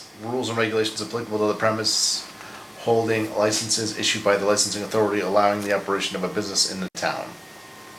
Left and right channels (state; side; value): identical; both; correlation 1.00